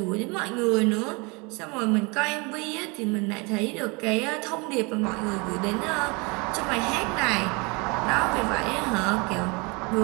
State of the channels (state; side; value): quieter; left; 28.9 dB